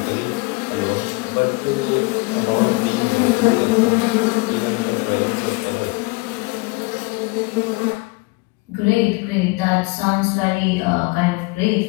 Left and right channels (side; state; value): right; quieter; 26.4 dB